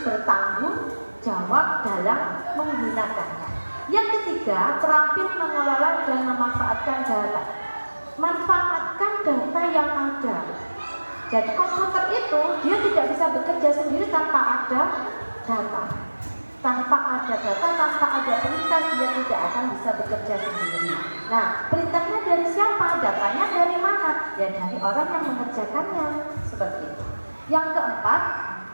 bertanggung jawab dalam menggunakannya. Yang ketiga, terampil mengelola dan memanfaatkan data. Manfaatkan data yang ada. Jadi komputer itu dia tidak bisa bekerja sendiri tanpa ada data. Tanpa ada data, tanpa ada perintah, dia tidak akan bisa bekerja sendiri. Nah, perintahnya dari siapa? Datanya dari mana? Ya dari orang yang mengerjakannya. Seperti itu. Yang keempat,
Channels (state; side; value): inverted; both; correlation -1.00